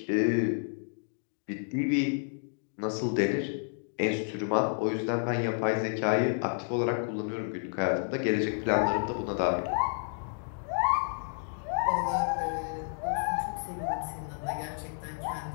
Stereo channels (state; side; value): silent; right; digital silence